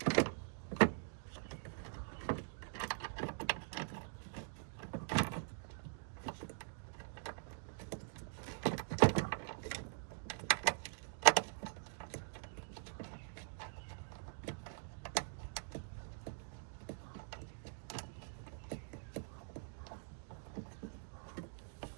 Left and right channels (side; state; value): left; silent; digital silence